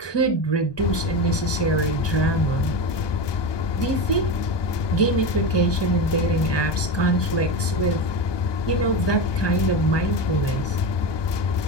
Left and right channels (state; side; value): late; right; 1.2 ms